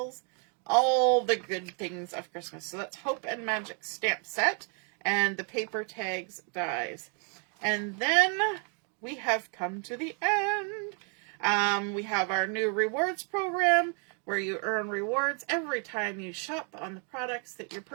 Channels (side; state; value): left; quieter; 40.0 dB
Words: all the good things of Christmas. So that's Hope and Magic stamp set, and the paper tags dies. And then we have come to the end. We have our new rewards program where you earn rewards every time you shop on the products that you're